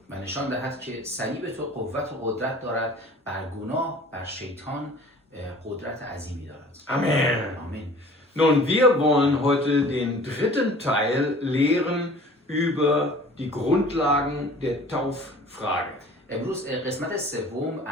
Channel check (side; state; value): both; normal; correlation 0.47